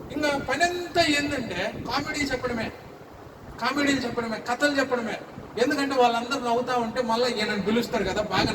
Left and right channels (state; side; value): identical; both; correlation 1.00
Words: ఇంకా పని అంతా ఏంటంటే కామెడీలు చెప్పడమే, కథలు చెప్పడమే. ఎందుకంటే వాళ్ళందరూ నవ్వుతా ఉంటే మళ్ళీ ఈయనను పిలుస్తారు కదా, బాగా